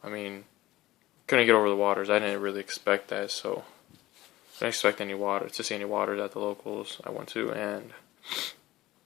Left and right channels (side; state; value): right; quieter; 16.9 dB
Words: I mean, couldn't get over the Waters. I didn't really expect that, so I didn't expect to see any Waters at the locals I went to, and